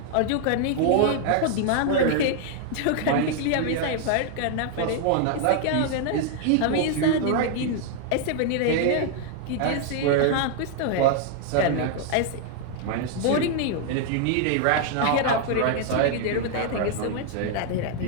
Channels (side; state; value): both; different; correlation 0.00